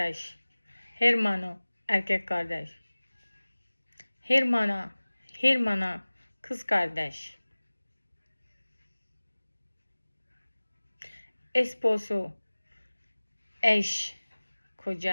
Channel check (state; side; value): inverted; both; correlation -1.00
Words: Hermano, erkek kardeş. Hermana, kız kardeş. Esposo, eş,